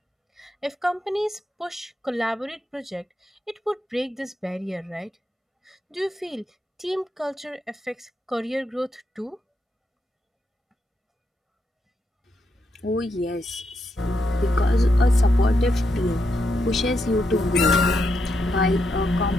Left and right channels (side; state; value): both; normal; correlation 0.82